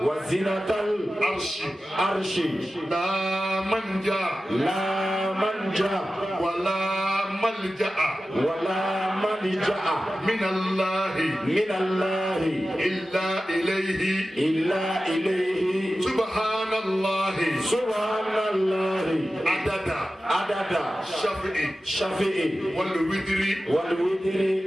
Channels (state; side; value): normal; both; correlation 0.94